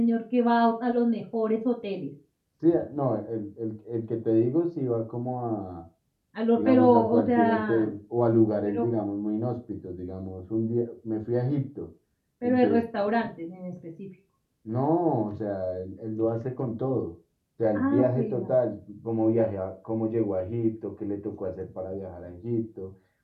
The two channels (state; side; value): identical; both; correlation 1.00